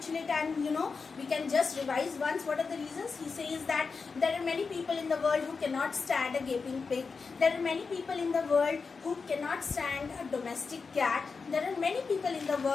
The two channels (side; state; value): right; quieter; 4.9 dB